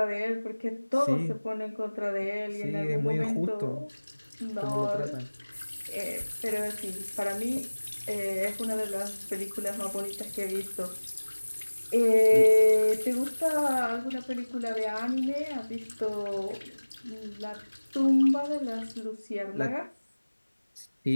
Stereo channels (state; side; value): inverted; both; correlation -1.00